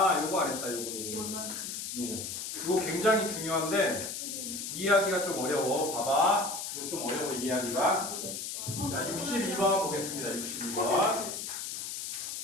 안 했다. 요거. 요거 굉장히 중요한데 이해하기가 좀 어려워. 봐봐. 이거 좀 어려워 이해하기가. 자, 62번 보겠습니다. 62번.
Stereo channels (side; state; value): left; noise; hiss, 5 dB below the sound